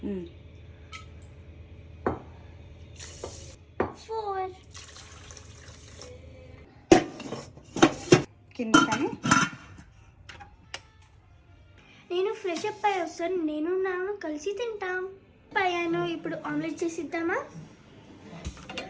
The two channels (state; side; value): identical; both; correlation 1.00